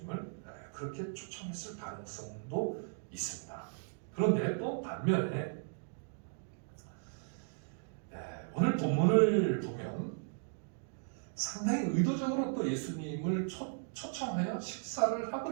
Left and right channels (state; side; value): silent; left; digital silence